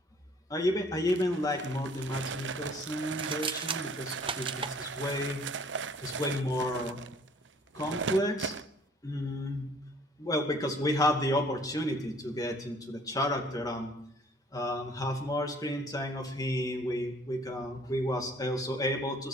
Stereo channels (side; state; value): both; normal; correlation 0.56